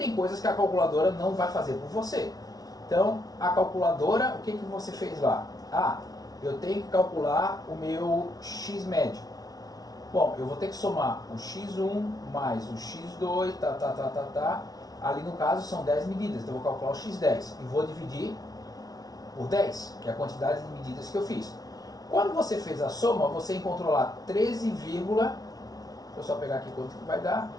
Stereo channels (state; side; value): late; right; 0.18 ms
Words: coisas que a calculadora não vai fazer por você. Então, a calculadora, o que você fez lá? Ah, eu tenho que calcular o meu x médio. Bom, eu vou ter que somar o x1 mais o x2, Ali no caso são 10 medidas, então eu vou calcular o x10 e vou dividir por 10, que é a quantidade de medidas que eu fiz. Quando você fez a soma, você encontrou lá 13, deixa eu só pegar aqui quanto que vai dar,